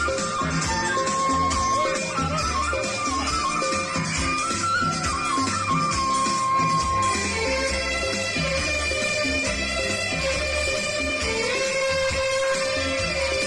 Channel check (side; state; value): both; identical; correlation 1.00